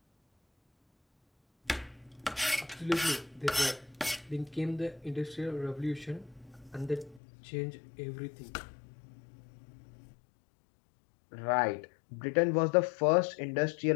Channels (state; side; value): drops out; right; at 7.2 s